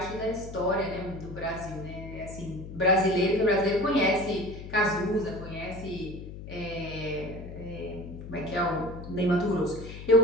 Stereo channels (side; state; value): left; noise; hum, 11 dB below the sound